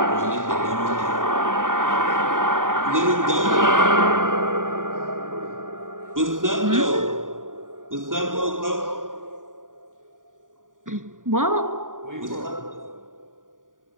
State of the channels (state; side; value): late; left; 0.89 ms